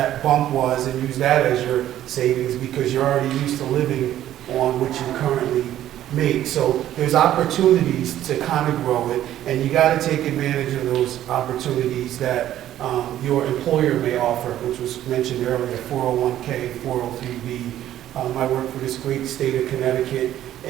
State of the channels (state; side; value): quieter; left; 12.4 dB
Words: bump was and use that as your savings because you're already used to living on what you currently make. So there's opportunities to kind of grow it, and you got to take advantage of those opportunities that your employer may offer, which was mentioned earlier, 401k, 403b. I work for this great state of Connecticut,